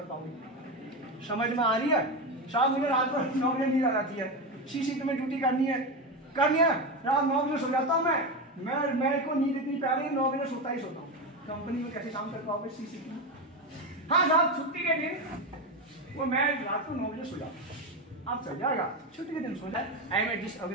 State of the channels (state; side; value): normal; both; correlation 0.15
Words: पाओगे? समझ में आ रही है? साहब मुझे रात को 9 बजे नींद आ जाती है, सी शिफ्ट में ड्यूटी करनी है, रात 9 बजे सो जाता हूँ मैं को नींद इतनी प्यारी है, 9 बजे सोता ही सोता हूँ। कंपनी में कैसे काम कर पाओगे सी शिफ्ट में? हाँ साहब छुट्टी के दिन वो मैं रात को 9 बजे सो जाता हूँ, आप चल जाएगा, छुट्टी के दिन सो जाए। I am a